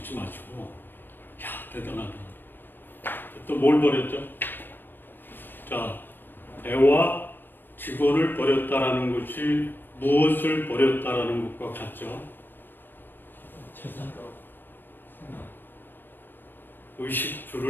마시고, 야, 대단하다. 또 뭘 버렸죠? 자, 배와 직원을 버렸다라는 것이 무엇을 버렸다라는 것과 같죠? 재산.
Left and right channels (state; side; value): late; right; 0.094 ms